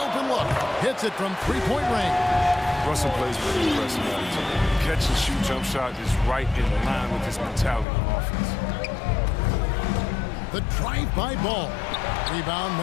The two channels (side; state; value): right; drops out; at 7.9 s